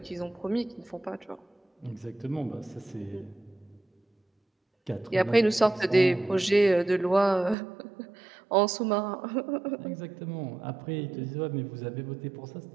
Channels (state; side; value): drops out; left; at 7.6 s